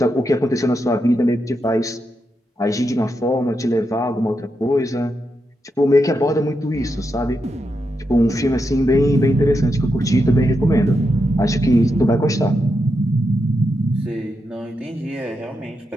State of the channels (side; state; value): both; normal; correlation 0.85